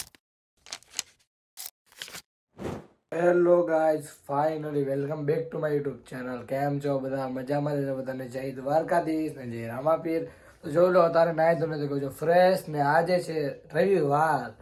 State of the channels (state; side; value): identical; both; correlation 1.00